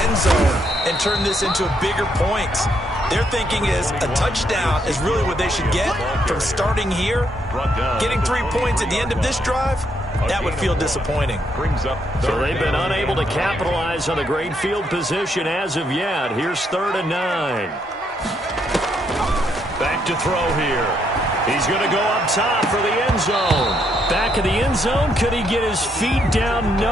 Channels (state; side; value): normal; both; correlation 0.75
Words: end zone and turn this into bigger points. Their thinking is a touchdown is really what they should get from starting here. Getting 3 points at the end of this drive, that would feel disappointing. So they've been unable to capitalize on the great field position as of yet. Here's 3rd and 9. Back to throw here. He's going to go up top for the end zone. Back of the end zone. Could he get his feet down?